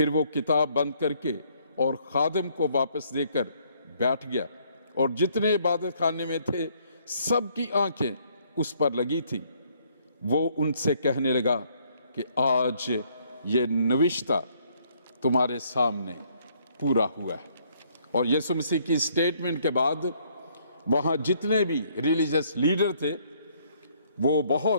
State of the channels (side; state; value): both; inverted; correlation -0.66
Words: وہ کتاب بند کر کے اور خادم کو واپس دے کر بیٹھ گیا، اور جتنے عبادت خانے میں تھے سب کی آنکھیں اس پر لگی تھی۔ وہ ان سے کہنے لگا کہ آج یہ نوشتہ تمہارے سامنے پورا ہوا ہے۔ اور یسوع مسیح کی سٹیٹمنٹ کے بعد وہاں جتنے بھی ریلیجس لیڈر تھے وہ